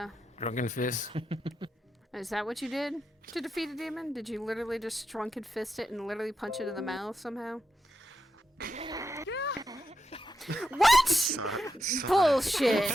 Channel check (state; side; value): normal; both; correlation 0.86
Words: Drunken fist. Is that what you did to defeat a demon? Did you literally just drunken fist it and literally punch it in the mouth somehow? What?